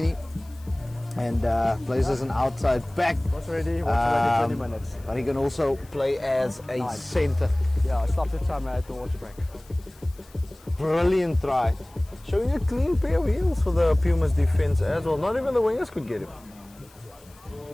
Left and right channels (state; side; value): noise; left; hiss, 27 dB below the sound